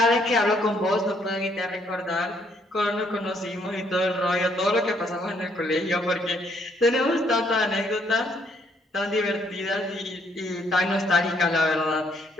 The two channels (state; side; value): normal; both; correlation 0.69